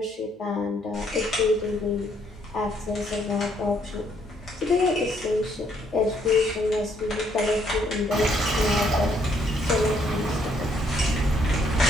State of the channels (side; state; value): both; normal; correlation 0.69